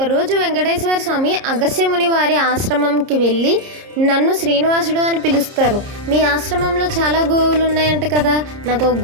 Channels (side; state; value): left; late; 30 ms